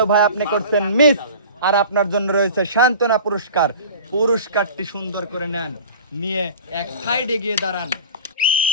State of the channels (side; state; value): both; inverted; correlation -0.39